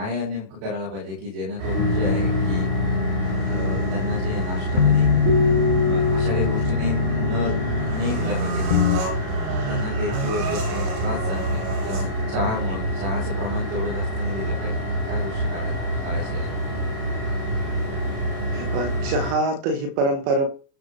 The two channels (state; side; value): late; left; 36 ms